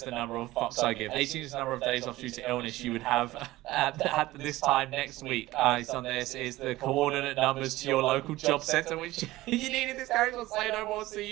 the number of fucks I give. 18 is the number of days off due to illness you would have at this time next week. It's on this is the coordinate numbers to your local job centre, which you needed this character to say no more. See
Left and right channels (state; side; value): quieter; left; 17.6 dB